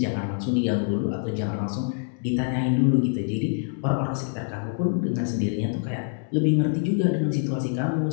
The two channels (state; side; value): silent; right; digital silence